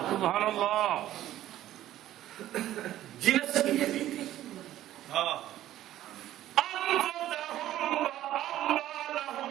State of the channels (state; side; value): quieter; left; 13.4 dB